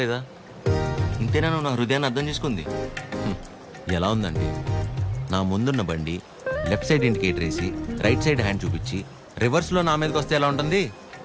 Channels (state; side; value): identical; both; correlation 1.00